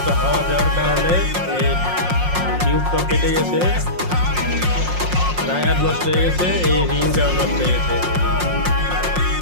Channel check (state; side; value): late; left; 5.6 ms